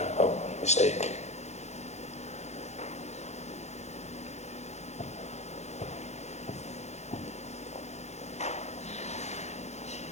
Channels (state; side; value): late; right; 0.32 ms